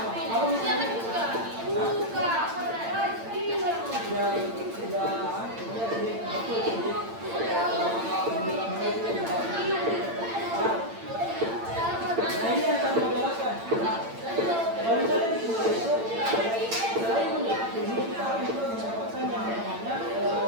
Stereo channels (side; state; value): left; late; 8.8 ms